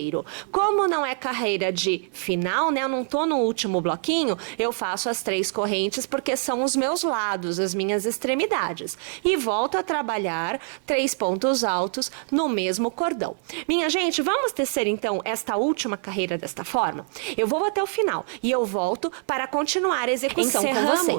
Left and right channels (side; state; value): left; silent; 57 dB below the other